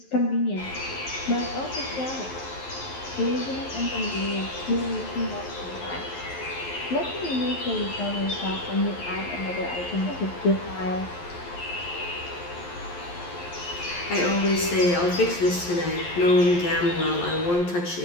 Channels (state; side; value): late; right; 11 ms